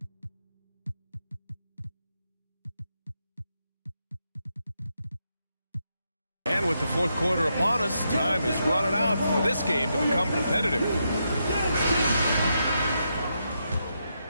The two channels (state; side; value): inverted; both; correlation -0.82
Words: And with the fourth quarter upon us, time is running out for this game to become competitive.